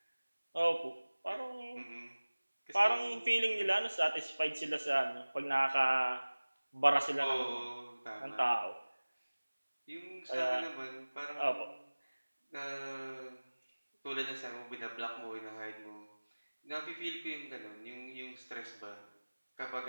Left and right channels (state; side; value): inverted; both; correlation -1.00